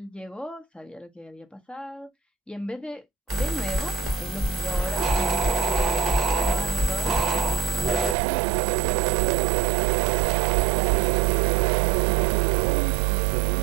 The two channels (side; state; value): left; drops out; at 8.2 s